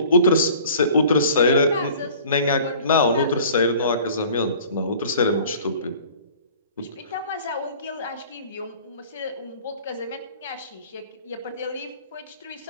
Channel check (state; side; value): inverted; both; correlation -0.48